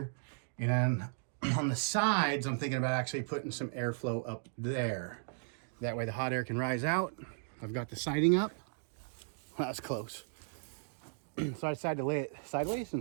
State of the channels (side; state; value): left; silent; digital silence